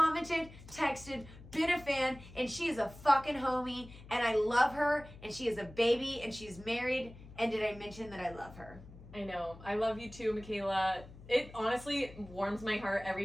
texted, been a fan, and she is a fucking homie, and I love her, and she is a baby, and she's married, and did I mention that I love her? I know. I love you too, Michaela. It honestly warms my heart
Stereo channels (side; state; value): left; noise; hum, 18 dB below the sound